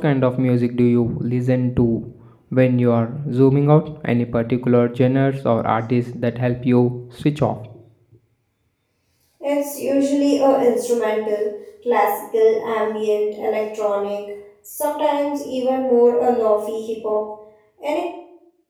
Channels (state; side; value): identical; both; correlation 1.00